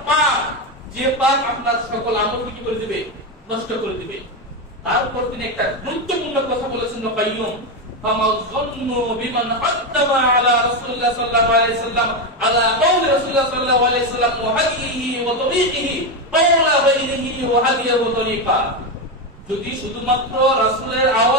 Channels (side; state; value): both; normal; correlation 0.11